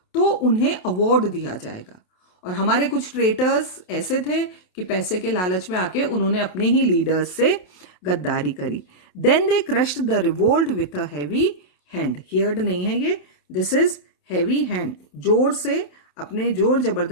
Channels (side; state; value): right; late; 28 ms